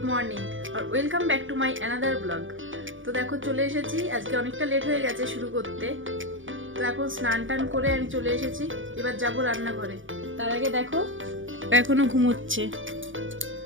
morning আর welcome back to my another blog. তো দেখো চলে এসেছি, আজকে অনেকটা লেট হয়ে গেছে শুরু করতে। তো এখন স্নান টান করে আমি চলে এসেছি, এবার যাব রান্নাঘরে। তার আগে দেখো এখনো ঘুমোচ্ছে।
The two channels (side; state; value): left; late; 0.57 ms